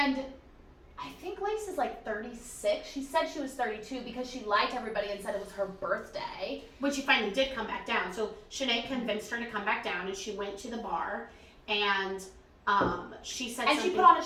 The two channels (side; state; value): both; identical; correlation 1.00